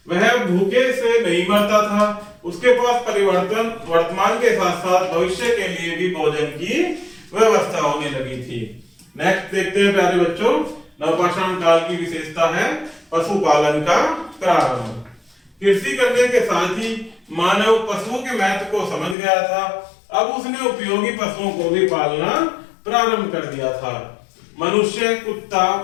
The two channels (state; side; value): drops out; right; at 19.2 s